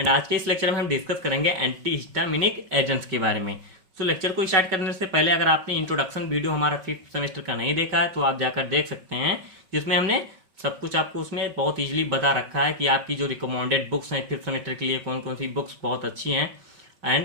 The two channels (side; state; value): left; late; 5.3 ms